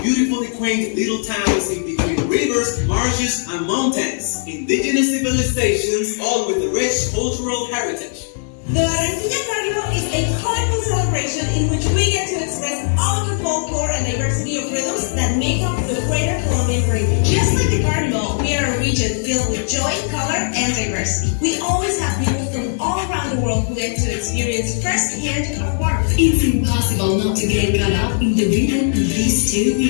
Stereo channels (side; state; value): right; silent; digital silence